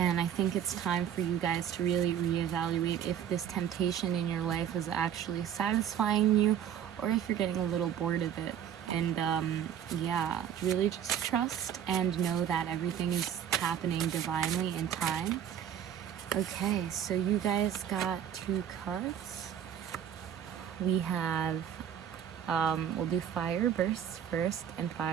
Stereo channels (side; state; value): left; quieter; 9.2 dB